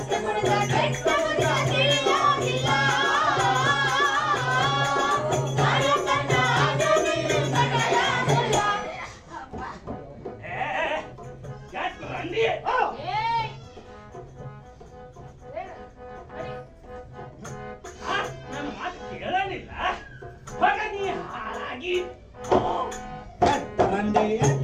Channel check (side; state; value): both; identical; correlation 1.00